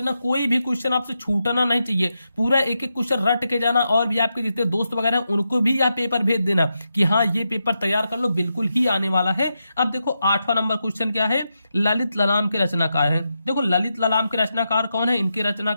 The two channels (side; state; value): both; inverted; correlation -0.86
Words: कोई भी क्वेश्चन आपसे छूटना नहीं चाहिए, पूरा एक एक क्वेश्चन रट के जाना, और भी आपके जितने दोस्त वगैरह हैं उनको भी यह पेपर भेज देना कि हाँ ये पेपर तैयार कर लो, बिल्कुल ही आने वाला है। अब देखो 8वां नंबर क्वेश्चन क्या है? ललित ललाम के रचनाकार है। देखो ललित ललाम के रचनाकार कौन है? इनके